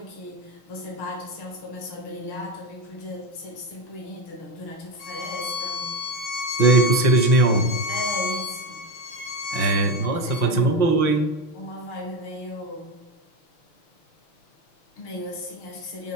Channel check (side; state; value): right; late; 5.8 ms